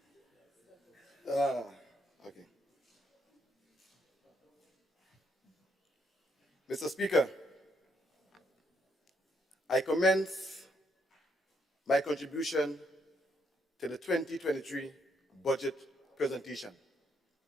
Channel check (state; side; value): normal; both; correlation 0.74